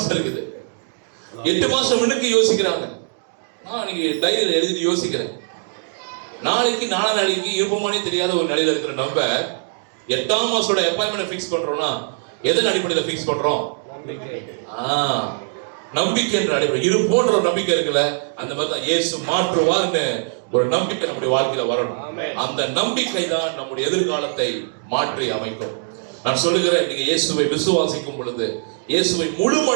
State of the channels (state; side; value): silent; left; digital silence